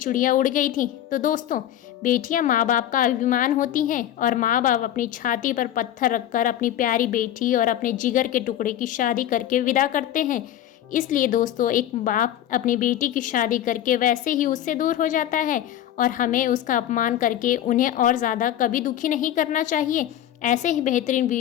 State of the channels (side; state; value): right; quieter; 11.8 dB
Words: उड़ गई थी। तो दोस्तों, बेटियां माँ बाप का अभिमान होती हैं, और माँ बाप अपनी छाती पर पत्थर रखकर अपनी प्यारी बेटी और अपने जिगर के टुकड़े की शादी करके विदा करते हैं। इसलिए दोस्तों, एक बाप अपनी बेटी की शादी करके वैसे ही उससे दूर हो जाता है, और हमें उसका अपमान करके उन्हें और ज़्यादा कभी दुखी नहीं करना चाहिए। ऐसे ही बेहतरीन